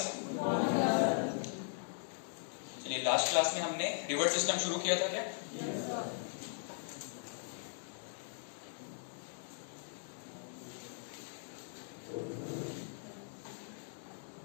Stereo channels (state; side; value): silent; right; digital silence